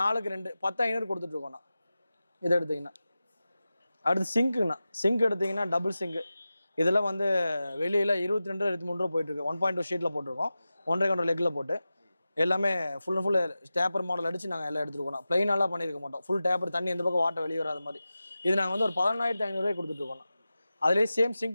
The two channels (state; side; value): inverted; both; correlation -0.94